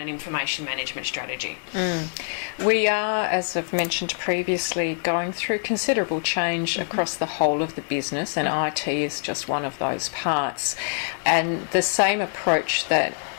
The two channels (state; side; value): silent; right; 62 dB below the other